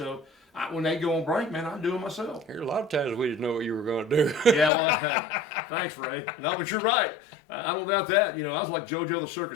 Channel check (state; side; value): drops out; right; at 4.7 s